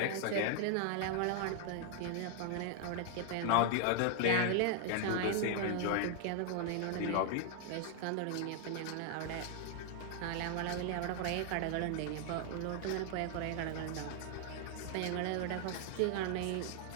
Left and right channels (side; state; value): both; different; correlation 0.00